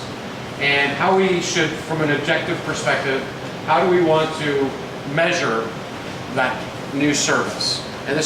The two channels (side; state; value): both; identical; correlation 1.00